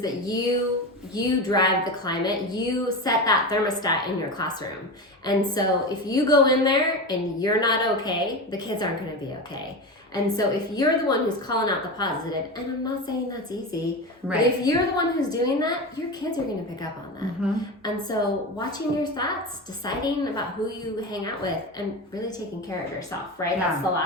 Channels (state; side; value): normal; both; correlation 0.23